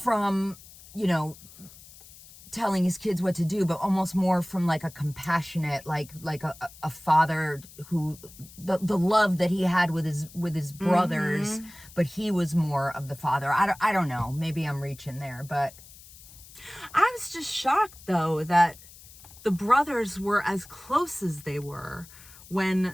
telling his kids what to do, but almost more from like a compassionate, like a father who, the love that he had with his brothers, but he was more of the father. I don't know. Maybe I'm reaching there, but I was just shocked though that the brothers were as close as they were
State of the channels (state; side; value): noise; left; hiss, 20 dB below the sound